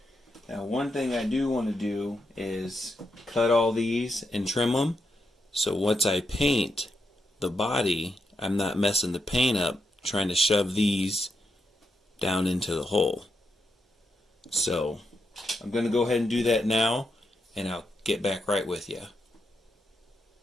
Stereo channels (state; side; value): normal; both; correlation 0.82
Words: Now one thing I do want to do is cut all these and trim them, so once I paint the body, I'm not messing the paint up trying to shove these down into the hole. So I'm going to go ahead and do that now, and I'll get back right with you.